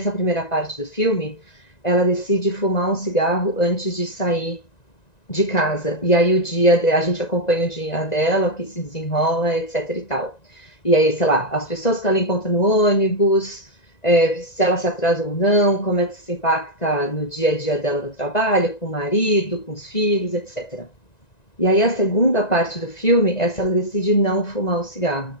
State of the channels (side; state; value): right; late; 1.9 ms